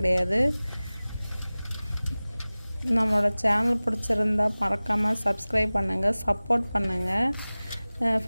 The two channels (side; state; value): both; inverted; correlation -0.99